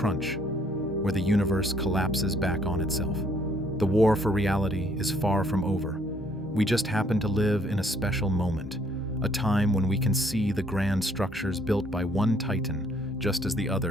where the universe collapses back on itself. The war for reality is far from over. We just happen to live in a special moment, a time when we can see the grand structures built by one titan just as the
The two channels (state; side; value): normal; both; correlation 0.65